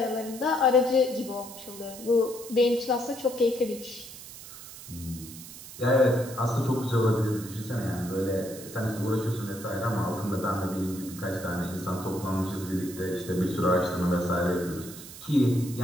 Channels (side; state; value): right; noise; hiss, 14 dB below the sound